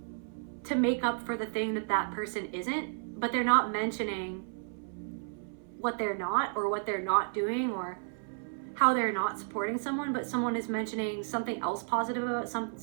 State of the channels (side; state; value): left; silent; 56 dB below the other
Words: to make up for the thing that that person isn't, but they're not mentioning what they're not, or what they're not doing, or how they're not supporting someone, but someone is mentioning something else positive about